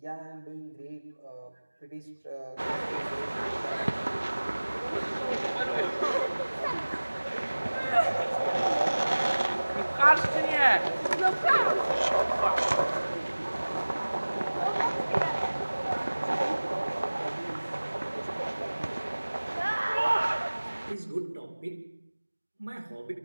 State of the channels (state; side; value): inverted; both; correlation -1.00